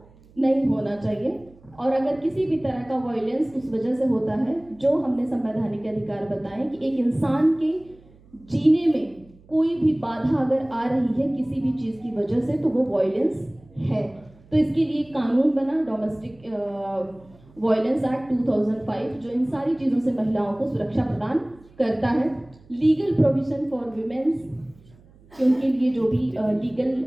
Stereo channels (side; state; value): right; noise; hum, 27 dB below the sound